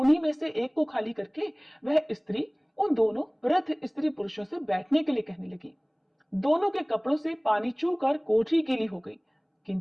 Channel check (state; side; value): identical; both; correlation 1.00